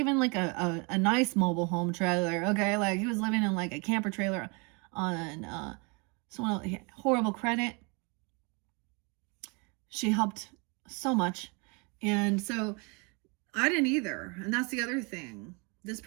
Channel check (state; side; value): quieter; left; 31.5 dB